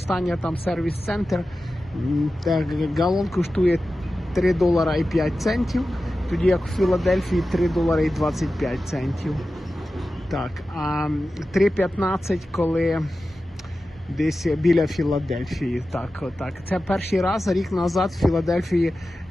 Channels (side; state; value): both; normal; correlation 0.94